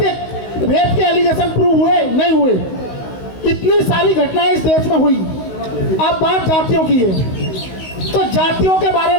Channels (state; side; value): late; right; 16 ms